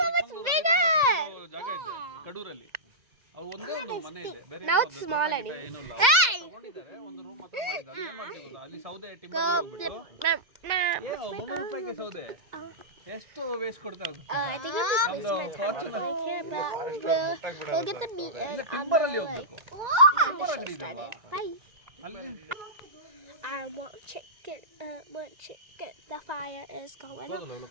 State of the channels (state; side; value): late; left; 2.0 ms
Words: so much bigger. ಜಾಗ ಇದೆ ಕಡೂರಲ್ಲಿ. ಅವು ಒಂದೇ ಒಂದು ಮನೆ ಇದೆ. ಬೇರೆ Now it's small anyway. Hey! ತಗೊಂಡಿದ್ದಾರೆ ಒಂದು ರೂಮ್ ಮಾತ್ರ ಮಾಡಿದ್ದಾರೆ. ಏನು ಮಾಡ್ತಿದ್ರು ಅಲ್ಲಿ ಸೌದೆ ಟಿಂಬರ್ ಹೋಗ್ಬಿಟ್ಟು. ಏನು 300 ರೂಪಾಯಿಗೆ ಸೌದೆ? ಎಷ್ಟು ವೇಸ್ಟ್ ಕೊಡ್ತಾ ಅದು? I think it was we'll get the meat and timber ಅಲ್ಲಿ ಹೋಗ್ಬೇಕು. ಟಿಂಬರ್ ಅಂಗಡಿ ಇದೆ ಅಲ್ವಾ? Bye. ಅಲ್ಲಿ I want chicken. Want chicken. The fire is going out.